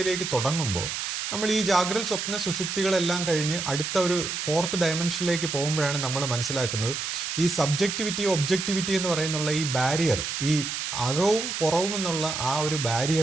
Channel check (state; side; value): noise; right; hiss, 3 dB below the sound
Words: തുടങ്ങുമ്പോൾ, നമ്മൾ ഈ ജാഗ്രത സ്വപ്ന സുഷുപ്തികളെല്ലാം കഴിഞ്ഞ് അടുത്ത ഒരു ഫോർത്ത് ഡയമെൻഷനിലേക്ക് പോകുമ്പോഴാണ് നമ്മൾ മനസ്സിലാക്കുന്നത് ഈ സബ്ജക്റ്റിവിറ്റി ഒബ്ജക്റ്റിവിറ്റി എന്ന് പറയുന്നുള്ള ഈ ബാരിയർ, ഈ അകവും പുറവും എന്നുള്ള ആ ഒരു